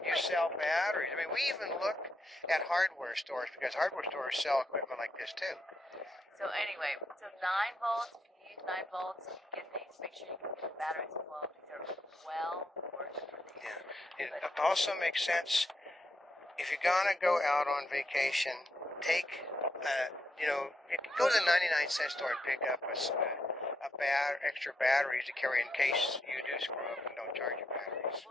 you sell batteries. I mean, we even looked at hardware stores because hardware stores sell equipment like this too. So anyway, 9 volts. If you use 9 volts, you get these. Make sure you get the batteries as well. These are well worth it for these. Yeah. It also makes sense if you're gonna go out on vacation. Take, go to the 99-cent store and pick up extra batteries to carry in case you do screw up and don't charge your batteries.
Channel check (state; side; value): normal; both; correlation 0.80